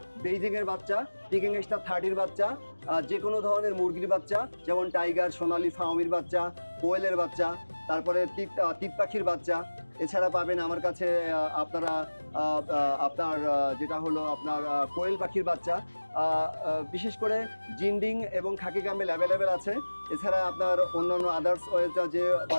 বেইজিংয়ের বাচ্চা, পিকিং স্টার 30-র বাচ্চা, যে কোনো ধরনের মুরগির বাচ্চা, যেমন টাইগার, সোনালী, ফাউমির বাচ্চা, কোয়েলের বাচ্চা, তারপরে তিত পাখির বাচ্চা। এছাড়া পাবেন আমার কাছে আপনার যেটা হলো আপনার কোয়েল পাখির বাচ্চা, বিশেষ করে জিন্ডিং এবং খাকি ক্যাম্বেল অ্যাভেলেবেল আছে। এছাড়া আপনার অন্যান্য আদার্স যে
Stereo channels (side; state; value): both; inverted; correlation -1.00